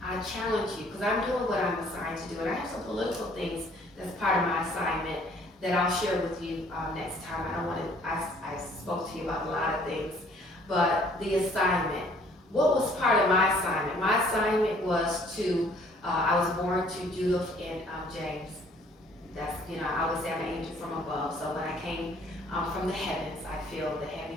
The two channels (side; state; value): both; normal; correlation 0.59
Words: I challenge you, because I'm doing what I'm assigned to do, and I have some political things that's part of my assignment that I'll share with you next time. I don't want to, I spoke to you about a lot of things, but the assignment. What was part of my assignment? My assignment was to, I was born to Judith and James. That's, you know, I was an angel from above, so when I came from the heavens, I feel the